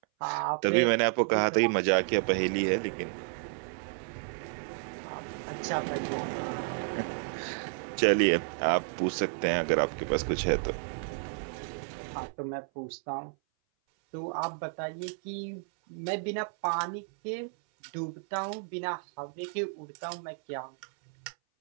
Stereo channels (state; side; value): silent; left; 57 dB below the other